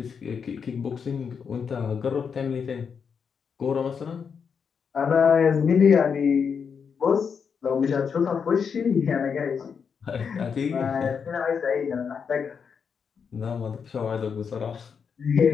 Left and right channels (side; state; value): right; quieter; 6.4 dB